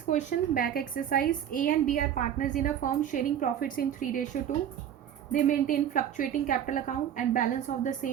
question, back exercise. A and B are partners in a firm sharing profits in 3:2. They maintain fluctuating capital account and balance of the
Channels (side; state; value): left; quieter; 9.7 dB